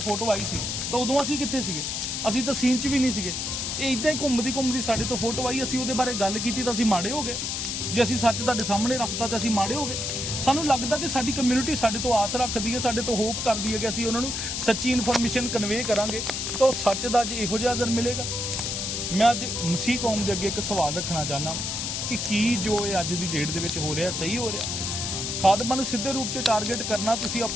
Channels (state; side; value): noise; left; hiss, 2 dB below the sound